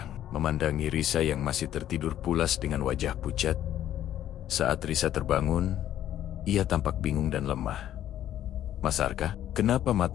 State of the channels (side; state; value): right; quieter; 11.8 dB